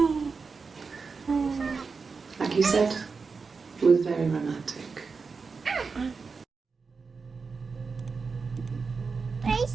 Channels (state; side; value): quieter; left; 4.8 dB